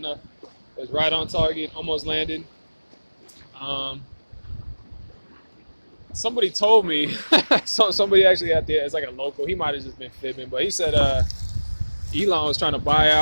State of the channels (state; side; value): inverted; both; correlation -1.00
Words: It was right on target, almost landed. Somebody told me, somebody actually out there, it's like a local, he might have just been fibbing, but he said Elon was trying to buy